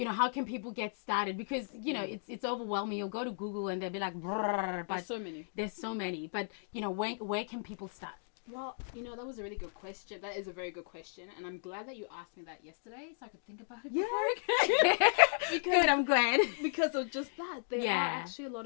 How can people get started? Because, it's overwhelming. You'll go to Google and they'll be like, brrr, but There's so many. there's so many. But, where can people start? Well, that was a really good question. That is a very good question. And I'm glad that you asked me that yesterday so I could think about it before I Good, I'm glad. because of just that. There Yeah. are actually a lot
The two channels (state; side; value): silent; right; digital silence